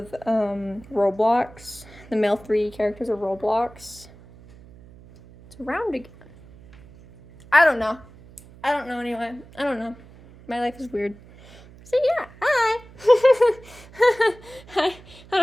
Roblox. The male 3 characters of Roblox. It's round again. I don't know anyway. I don't know. My life is weird. So yeah, hi. I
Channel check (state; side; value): noise; right; hum, 22 dB below the sound